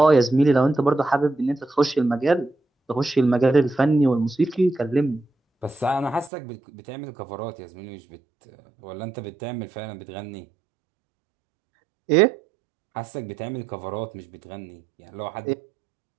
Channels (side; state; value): left; drops out; at 6.3 s